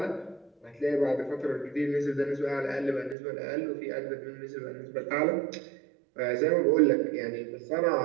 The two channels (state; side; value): drops out; left; at 3.2 s